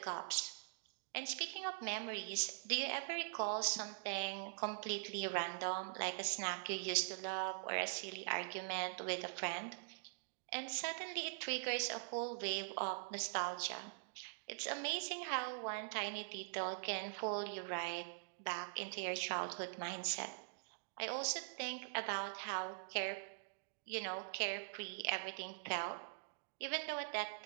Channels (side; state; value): left; silent; digital silence